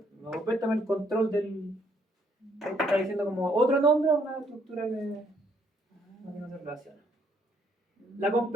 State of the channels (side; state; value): both; normal; correlation 0.68